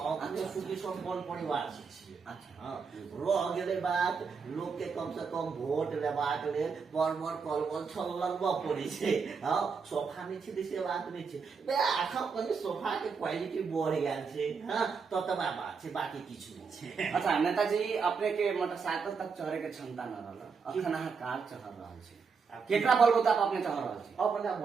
सुखी संपन्न परिवार से छिए। अच्छा हाँ रह गेले बात लोग के कम से कम वोट लेबाक लेल बड़ कलबल छललबा पड़ी छे। हाँ सोफा नहीं छे से बात नहीं छे बे आखा कने सोफा के क्वालिटी बढ़ गेल छे। हाँ ततबा बात छे बाकी किछु नहीं छे। अच्छा नेताजी अपने के मोटरसाइकिल तक चढ़े के क्षमता न रहल अखन अहाँ कार चढ़ रहल छी केकरा बलबूता पर अपने चढ़ रहल छी। अपना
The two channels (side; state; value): left; quieter; 5.5 dB